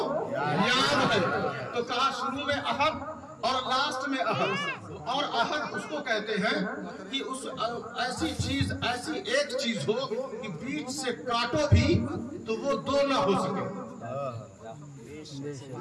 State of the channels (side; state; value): both; identical; correlation 1.00